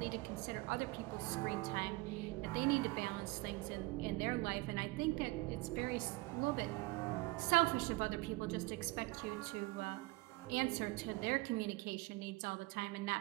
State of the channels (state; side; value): quieter; left; 22.9 dB